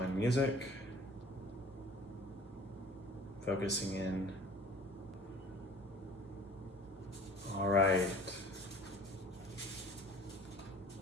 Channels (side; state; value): both; normal; correlation 0.47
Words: music, focusing in. All right.